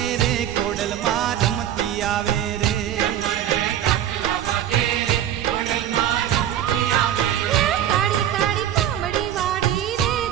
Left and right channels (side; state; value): left; quieter; 11.0 dB